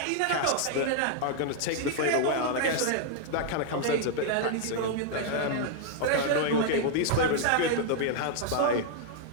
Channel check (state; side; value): different; both; correlation 0.00